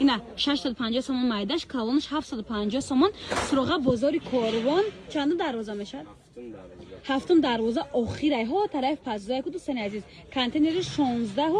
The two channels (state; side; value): identical; both; correlation 1.00